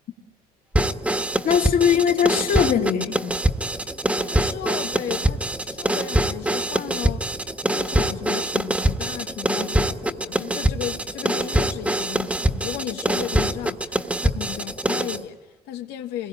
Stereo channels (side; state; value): both; normal; correlation 0.63